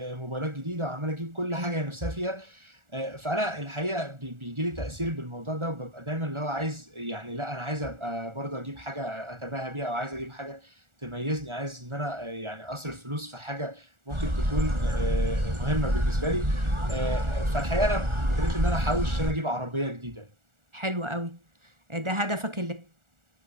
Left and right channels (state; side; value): late; left; 1.4 ms